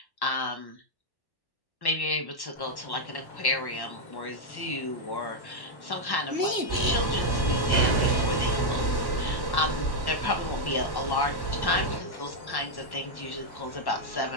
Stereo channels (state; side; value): late; right; 1.1 ms